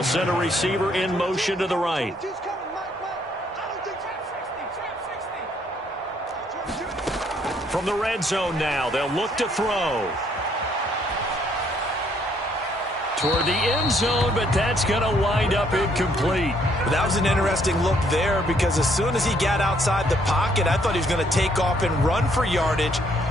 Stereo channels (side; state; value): both; normal; correlation 0.68